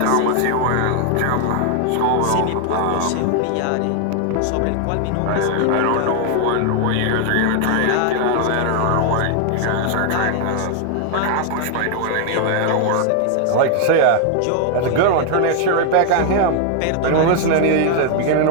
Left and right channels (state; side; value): different; both; correlation 0.00